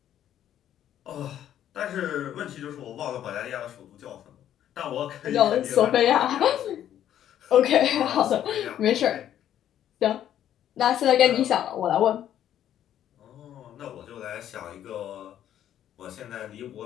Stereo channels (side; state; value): right; quieter; 10.9 dB